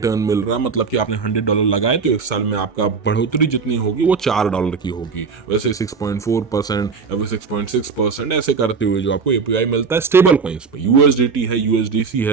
मिल रहा है। मतलब कि आपने $100 लगाए तो एक साल में आपका बढ़ोतरी जितनी होगी वो $4 की होगी। वैसे 6.4% या फिर 6.6% ऐसे करते हुए जो आपको APY मिलता है स्टेबल कॉइन्स पे। USDT है, USDC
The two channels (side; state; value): left; quieter; 5.2 dB